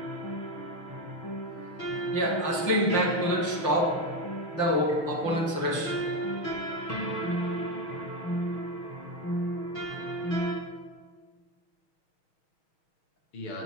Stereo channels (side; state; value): right; late; 6.3 ms